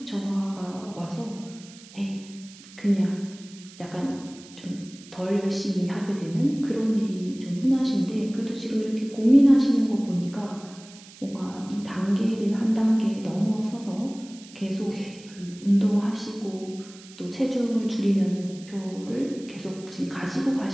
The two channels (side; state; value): right; noise; hiss, 20 dB below the sound